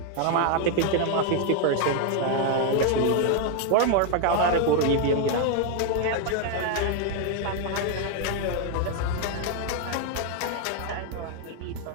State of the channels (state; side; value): different; both; correlation 0.01